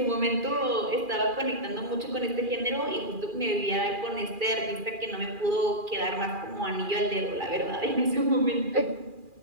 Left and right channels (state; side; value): late; left; 2.4 ms